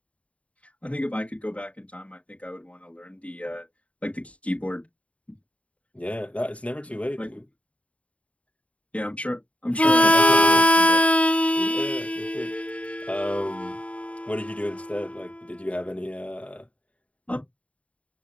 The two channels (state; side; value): late; right; 0.065 ms